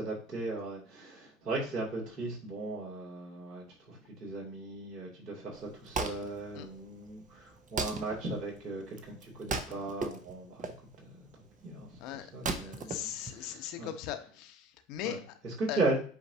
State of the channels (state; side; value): normal; both; correlation 0.44